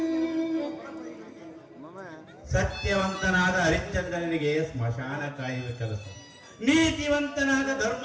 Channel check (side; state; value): both; identical; correlation 1.00